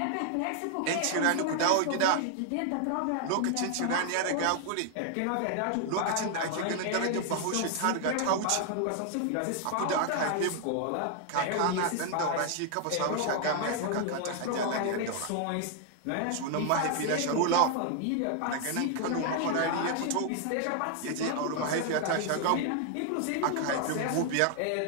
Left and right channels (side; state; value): both; different; correlation 0.00